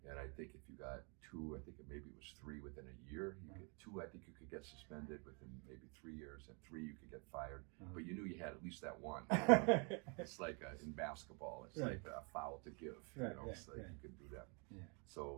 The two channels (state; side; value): quieter; left; 34.6 dB